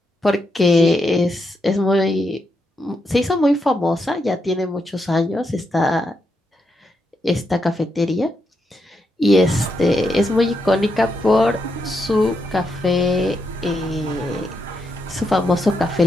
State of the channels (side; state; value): both; normal; correlation 0.82